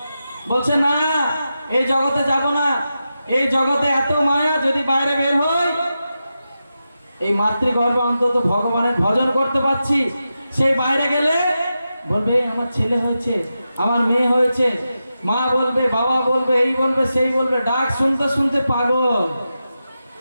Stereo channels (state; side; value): inverted; both; correlation -0.90